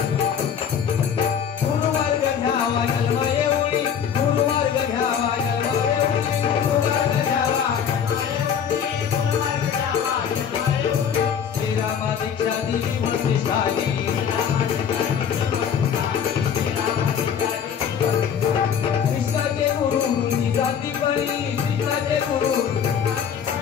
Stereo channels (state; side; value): quieter; right; 7.9 dB